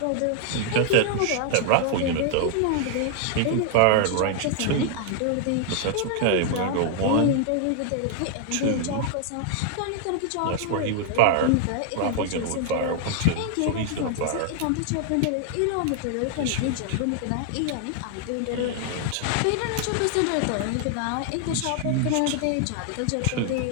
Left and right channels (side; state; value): both; different; correlation 0.00